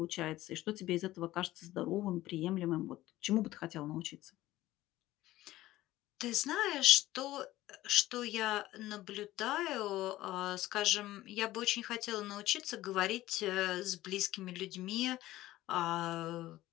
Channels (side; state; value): right; quieter; 16.1 dB